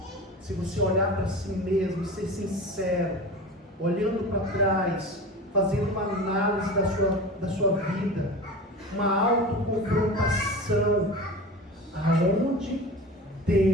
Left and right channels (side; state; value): both; normal; correlation 0.33